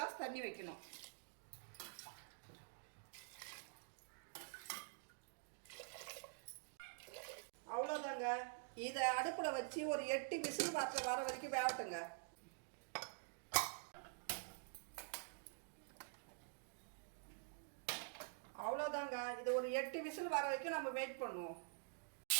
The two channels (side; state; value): left; silent; digital silence